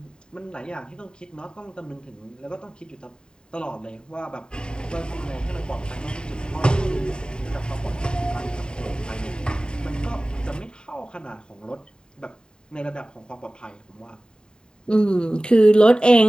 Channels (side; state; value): right; late; 0.048 ms